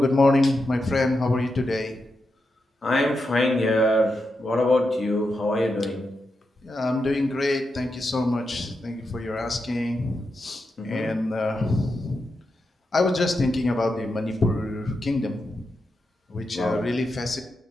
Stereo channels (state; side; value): normal; both; correlation 0.87